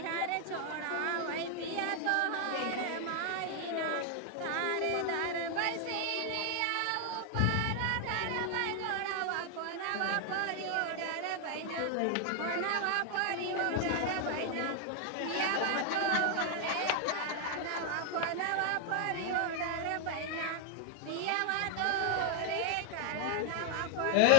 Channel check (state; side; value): different; both; correlation 0.00